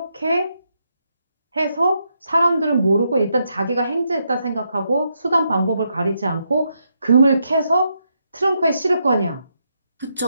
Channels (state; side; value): inverted; both; correlation -0.80